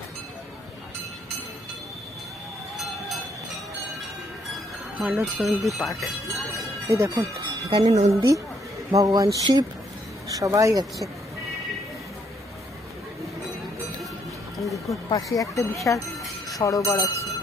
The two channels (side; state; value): both; normal; correlation 0.71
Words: মানস নন্দী পার্ক, এই দেখুন এখানে নন্দী, ভগবান শিব সবাই আছে। দেখুন পাশে একটা বিশাল সরোবর আছে,